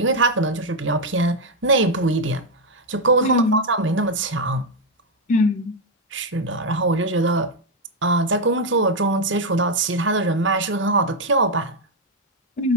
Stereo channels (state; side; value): normal; both; correlation 0.03